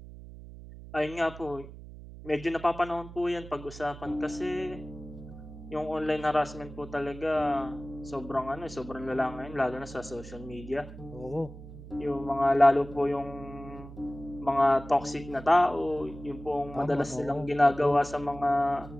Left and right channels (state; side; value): noise; right; hum, 15 dB below the sound